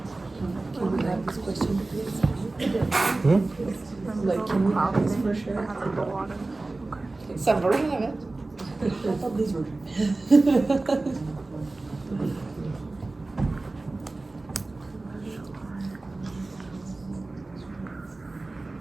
Like, can we have this for sure? Some version of it. I thought these were.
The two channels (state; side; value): quieter; left; 3.2 dB